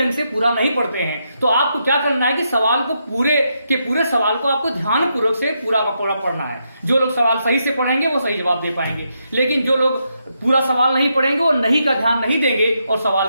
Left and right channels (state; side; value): inverted; both; correlation -0.81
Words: से पूरा नहीं पढ़ते हैं। तो आपको क्या करना है कि सवाल को पूरे सवाल को आपको ध्यान पूर्वक से पूरा का पूरा पढ़ना है। जो लोग सवाल सही से पढ़ेंगे वो सही जवाब दे पाएंगे, लेकिन जो लोग पूरा सवाल नहीं पढ़ेंगे वो नहीं का ध्यान नहीं देंगे और सवाल